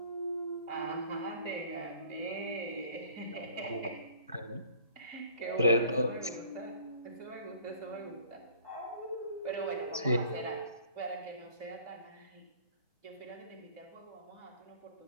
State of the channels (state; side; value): inverted; both; correlation -0.51